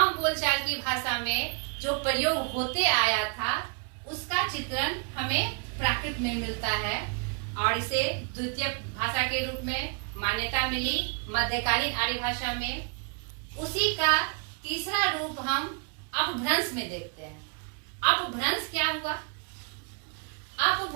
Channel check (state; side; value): quieter; left; 35.9 dB